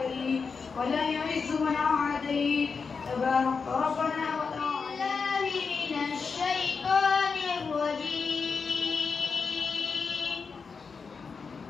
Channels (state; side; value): quieter; right; 5.2 dB